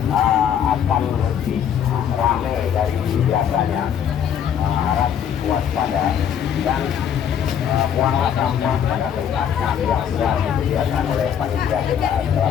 akan lebih ramai dari biasanya. Harap waspada dan buanglah sampah pada tempatnya yang sudah disediakan oleh panitia PKA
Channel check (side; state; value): right; quieter; 8.7 dB